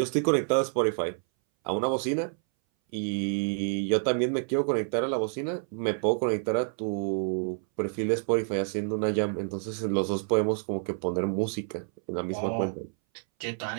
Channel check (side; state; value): left; silent; 59 dB below the other